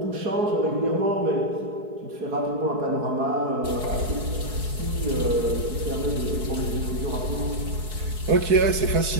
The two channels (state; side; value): late; left; 4.7 ms